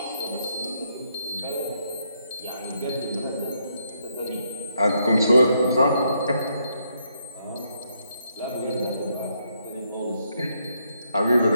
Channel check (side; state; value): both; inverted; correlation -0.76